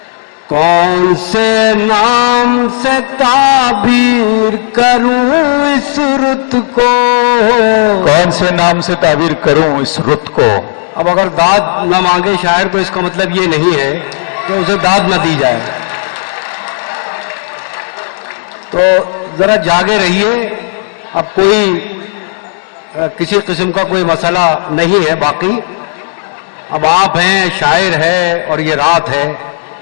कौन से नाम से ताबीर करूं इस रुत को। कौन से नाम से ताबीर करूं इस रुत को। अब अगर दाद न मांगे शायर तो इसका मतलब ये नहीं है कि उसे दाद न दी जाए। तो जरा जागे रहिए। अब कोई किसी किस्म का कोई मसला नहीं है। बाकी अब आप हैं, शायर है और ये रात है,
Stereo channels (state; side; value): silent; right; digital silence